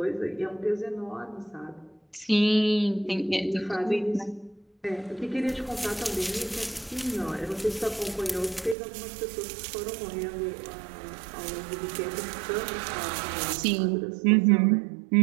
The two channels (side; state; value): left; drops out; at 8.8 s